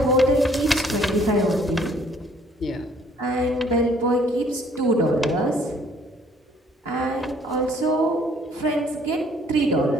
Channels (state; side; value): normal; both; correlation 0.60